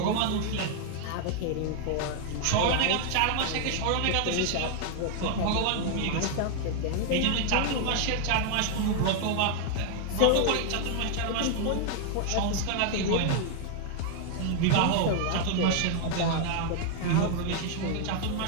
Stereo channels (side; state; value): both; different; correlation 0.00